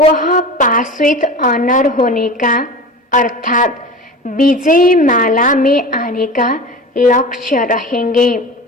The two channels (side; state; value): both; normal; correlation 0.33